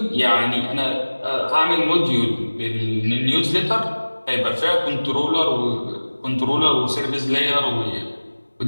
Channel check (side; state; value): both; inverted; correlation -1.00